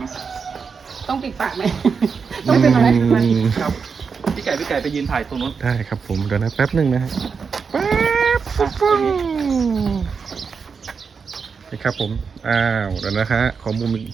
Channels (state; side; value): quieter; left; 5.6 dB